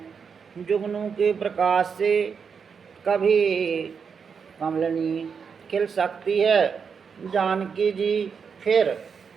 जुगनू के प्रकाश से कभी कमलनी खिल सकती है। जानकी जी फिर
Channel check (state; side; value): quieter; left; 6.2 dB